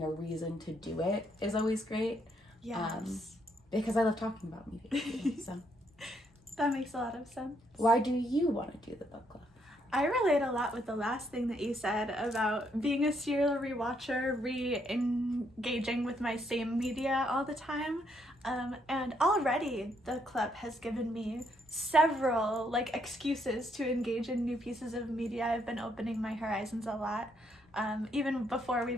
a reason to do it is always great. Yes. Because I love talking about media. So that makes a lot of sense. Why do you want to do the book club? I relate a lot with the last thing that you said about being a serial rewatcher, re-engaging with my same media all the time. And already the club has given me several excuses to engage in new pieces of media. I've been opening my horizons a lot, even before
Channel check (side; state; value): both; normal; correlation 0.73